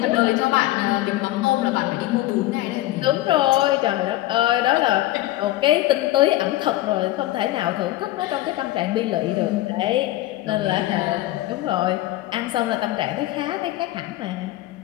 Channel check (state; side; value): quieter; right; 16.3 dB